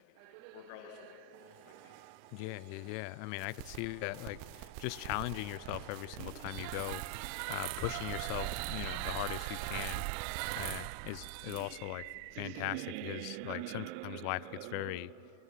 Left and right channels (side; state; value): both; different; correlation 0.00